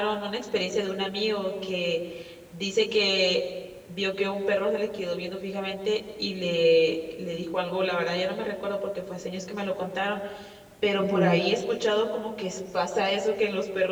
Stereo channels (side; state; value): both; identical; correlation 1.00